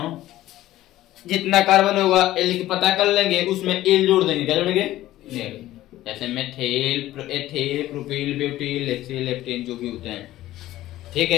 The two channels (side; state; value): right; quieter; 15.0 dB